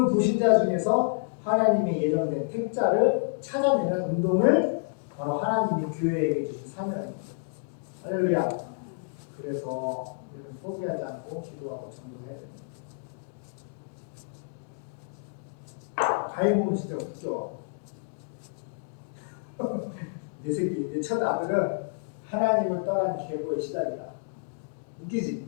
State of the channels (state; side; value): silent; right; digital silence